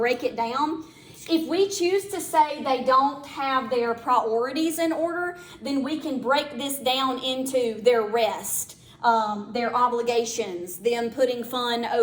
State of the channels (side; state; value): both; identical; correlation 1.00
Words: it down. If we choose to say they don't have their priorities in order, then we can break this down into their rest, their obligations, them putting fun